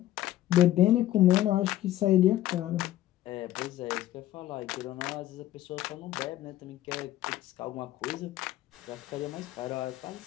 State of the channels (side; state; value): right; quieter; 14.1 dB